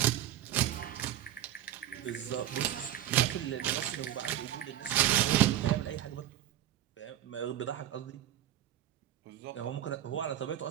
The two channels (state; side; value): quieter; left; 12.5 dB